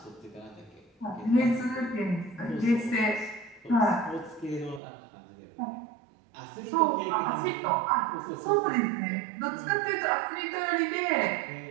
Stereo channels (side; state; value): left; drops out; at 4.8 s